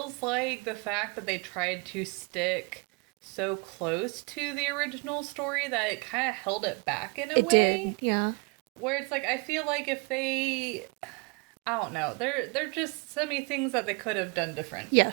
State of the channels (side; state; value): left; quieter; 31.2 dB